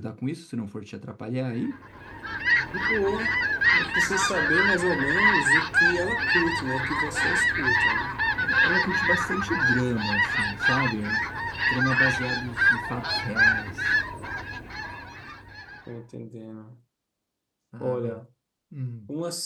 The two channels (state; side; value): identical; both; correlation 1.00